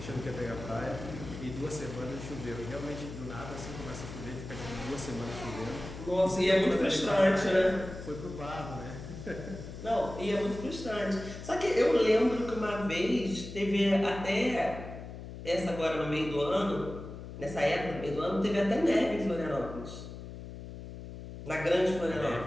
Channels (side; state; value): left; noise; hum, 11 dB below the sound